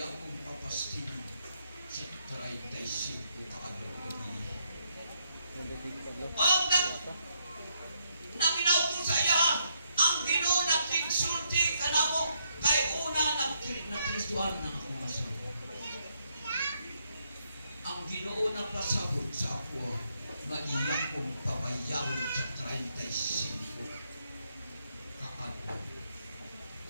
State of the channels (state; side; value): inverted; both; correlation -0.76